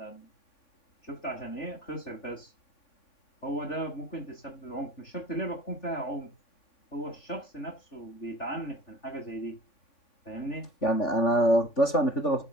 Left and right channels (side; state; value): right; late; 3.5 ms